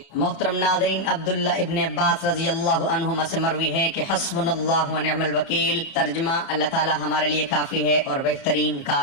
محترم ناظرین، عبداللہ ابن عباس رضی اللہ عنہما سے مروی ہے کہ حسبنا اللہ ونعم الوکیل، ترجمہ اللہ تعالی ہمارے لیے کافی ہے اور بہترین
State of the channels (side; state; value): right; late; 30 ms